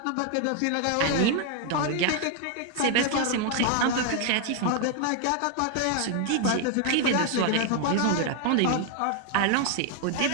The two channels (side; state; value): both; different; correlation 0.01